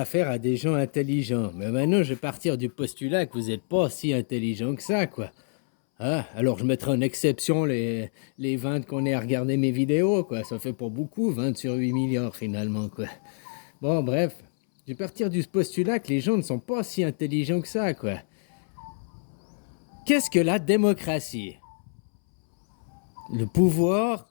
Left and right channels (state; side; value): silent; right; 61 dB below the other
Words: à des gens intelligents, mais maintenant, je vais partir du postulat que vous n'êtes pas si intelligent que ça, quoi. Ah, alors je mettrai en exception les 20 qu'on est à regarder mes vidéos, quoi. Ça fait pas beaucoup, 20 sur 8 milliards finalement, quoi. Bon, bref, je vais partir du postulat que les gens ne sont pas si intelligents que ça, quoi. Qu'est-ce que la démocratie? Le pouvoir